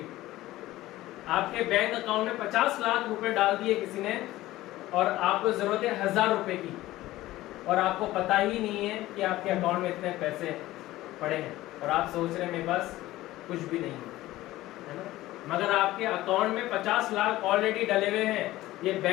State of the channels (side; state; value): right; quieter; 16.6 dB